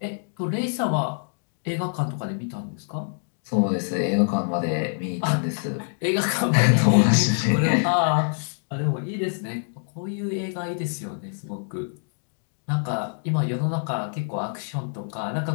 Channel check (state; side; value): silent; right; digital silence